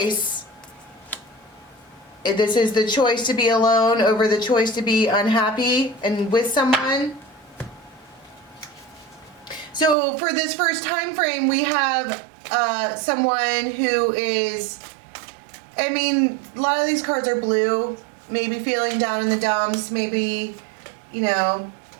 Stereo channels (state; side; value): drops out; left; at 10.0 s